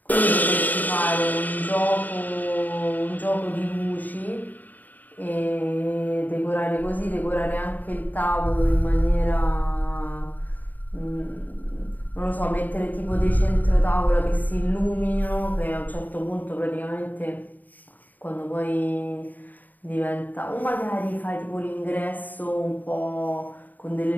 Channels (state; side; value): late; right; 0.084 ms